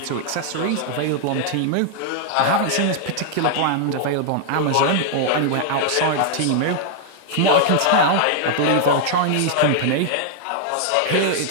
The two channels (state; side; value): different; both; correlation -0.01